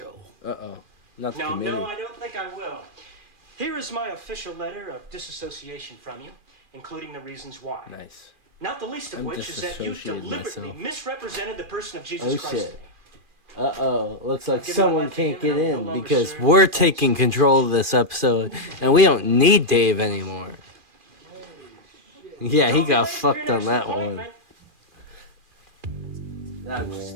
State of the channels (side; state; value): left; late; 2.4 ms